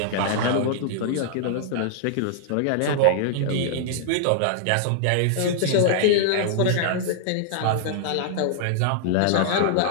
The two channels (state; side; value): different; both; correlation -0.01